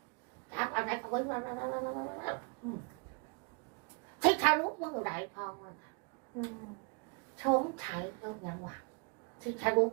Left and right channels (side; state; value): left; quieter; 35.2 dB